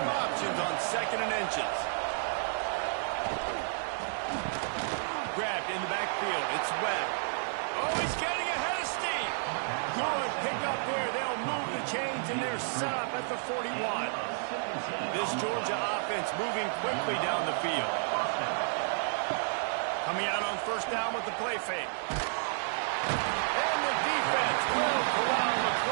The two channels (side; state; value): left; silent; digital silence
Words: options on second and inches. Grabbed in the backfield. It's Webb. Oh, he's getting ahead of steam. Good pick up there. They'll move the chains, and they're set up at the 41. This Georgia offense moving quickly down the field. Coming out on first down with the play fake. And the defense will corral the